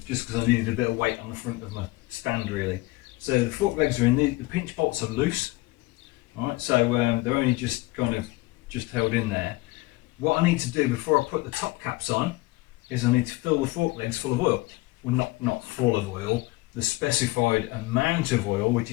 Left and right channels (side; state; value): right; quieter; 20.5 dB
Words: just because I needed a bit of weight on the front of my stand really. So the fork legs are in, the pinch bolts are loose. Alright, so they're only just kind of held in there. What I need to do before I put the top caps on is I need to fill the fork legs full of oil. Well, not full of oil, the specified amount of oil, which